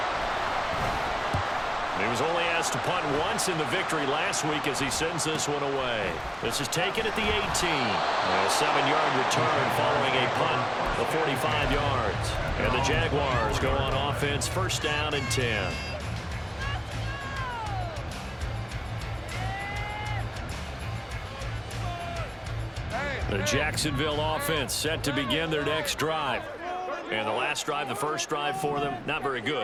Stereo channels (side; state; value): both; identical; correlation 1.00